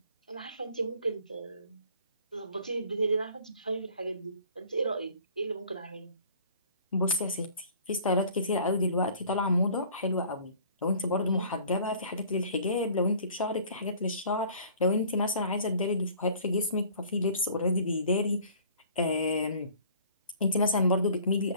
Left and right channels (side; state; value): both; inverted; correlation -0.51